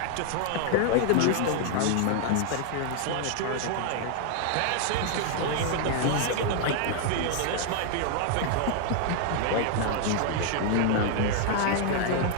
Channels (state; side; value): different; both; correlation 0.00